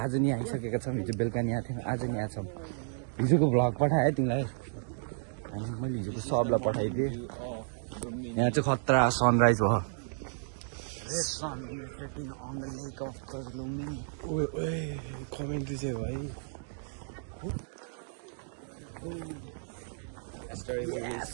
नि आइसकेका छौँ हिजो बेलुका नि आएको थियौँ आज नि आएको छौँ हिजोको भ्लग पठाएँ तिमीलाई अनि मैले हिजोको सबलाई पठाइदिएँ यहाँ चाहिँ खतरा सनराइज भयो कमेन्ट्री चाहिँ भाइ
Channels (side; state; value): left; silent; digital silence